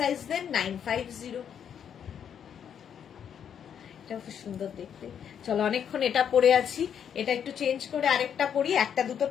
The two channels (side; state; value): right; quieter; 8.4 dB